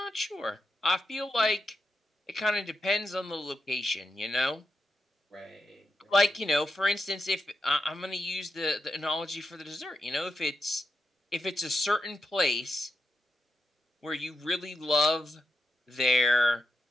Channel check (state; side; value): normal; both; correlation 0.86